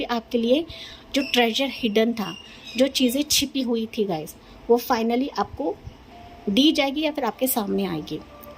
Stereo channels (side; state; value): both; identical; correlation 1.00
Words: आपके लिए जो ट्रेजर हिडन था, जो चीज़ें छिपी हुई थी गाइस, वो फाइनली आपको दी जाएगी या फिर आपके सामने आएगी।